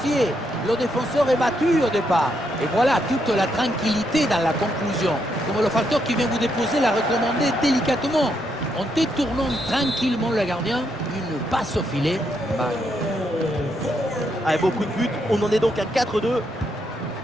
Le défenseur est battu au départ. Et voilà toute la tranquillité dans la conclusion. Comme le facteur qui vient vous déposer l'a recommandé délicatement. En détournant tranquillement le gardien, une passe au filet. Avec beaucoup de buts, on en est donc à 4-2.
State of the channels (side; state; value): both; normal; correlation 0.78